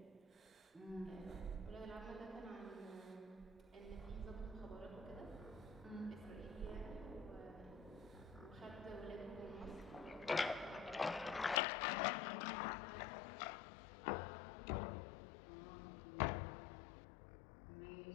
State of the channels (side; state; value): right; drops out; at 11.6 s